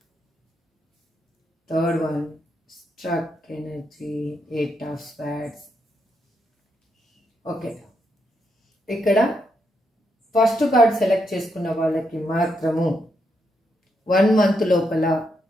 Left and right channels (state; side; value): normal; both; correlation 0.80